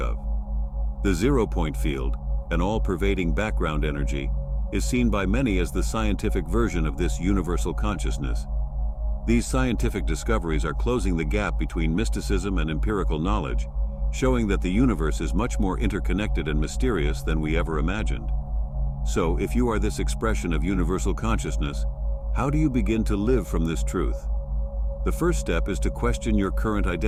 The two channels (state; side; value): identical; both; correlation 1.00